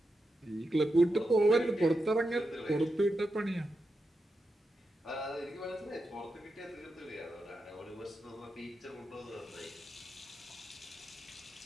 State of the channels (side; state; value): both; normal; correlation 0.88